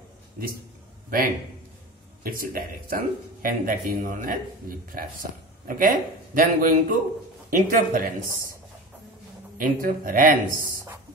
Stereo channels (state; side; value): normal; both; correlation 0.31